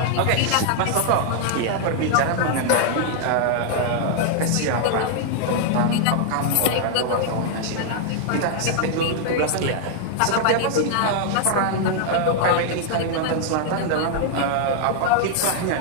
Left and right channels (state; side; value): different; both; correlation 0.00